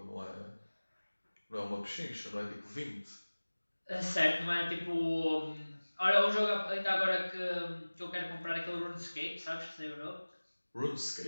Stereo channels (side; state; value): both; inverted; correlation -1.00